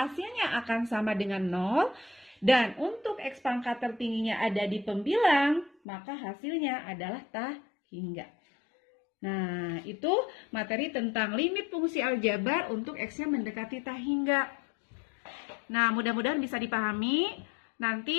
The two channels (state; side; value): drops out; right; at 5.8 s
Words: akan sama dengan 0. Dan untuk X pangkat tertingginya ada di pembilang, maka hasilnya adalah tak hingga. Nah, itu materi tentang limit fungsi aljabar untuk X-nya mendekati tak hingga. Nah, mudah-mudahan bisa dipahami.